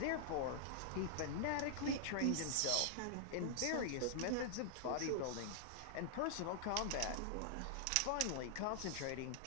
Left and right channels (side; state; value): both; different; correlation -0.01